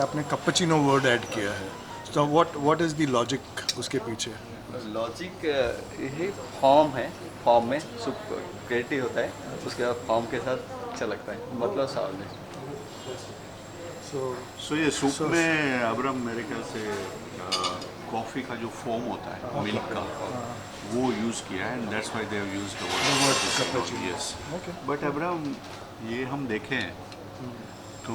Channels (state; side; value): identical; both; correlation 1.00